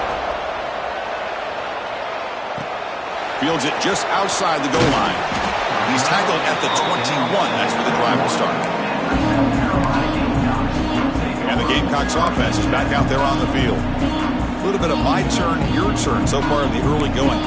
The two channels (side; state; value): both; identical; correlation 1.00